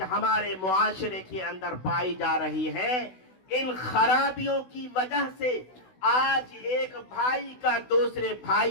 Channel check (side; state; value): right; late; 16 ms